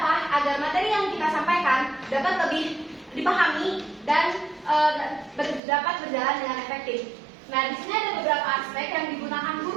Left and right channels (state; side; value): drops out; left; at 5.6 s